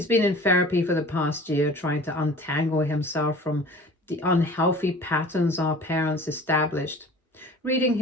been in therapy for the past year, trying to untangle himself from the unhealthy patterns our parents established. Reading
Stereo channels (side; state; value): both; normal; correlation 0.43